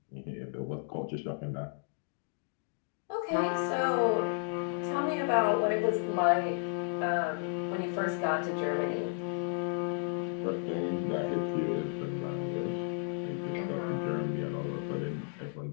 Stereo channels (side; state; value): right; silent; 56 dB below the other